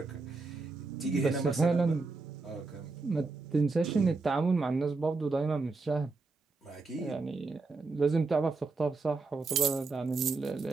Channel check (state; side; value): quieter; left; 3.8 dB